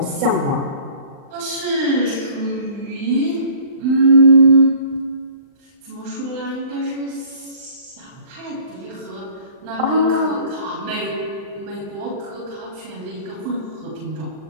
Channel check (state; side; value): late; left; 39 ms